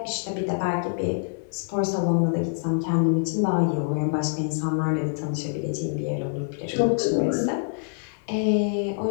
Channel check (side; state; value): right; silent; digital silence